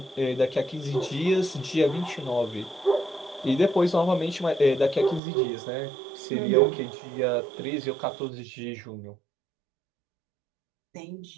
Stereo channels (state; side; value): drops out; left; at 5.2 s